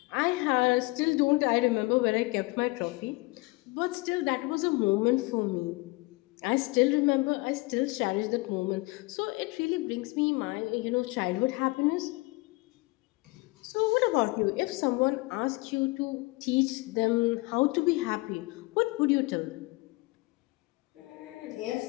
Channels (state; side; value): quieter; right; 24.2 dB